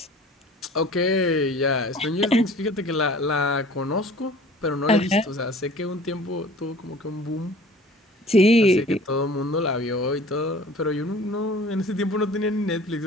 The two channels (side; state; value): both; normal; correlation 0.46